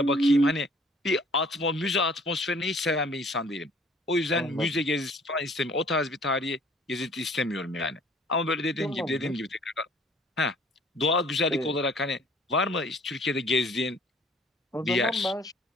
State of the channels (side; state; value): both; normal; correlation 0.55